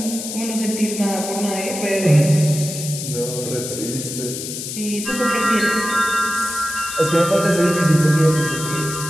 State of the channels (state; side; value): noise; left; hiss, 7 dB below the sound